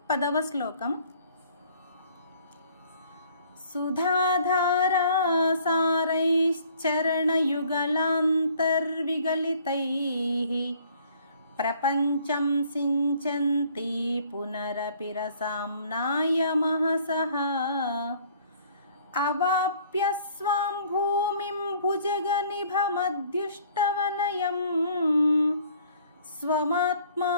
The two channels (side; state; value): both; inverted; correlation -0.58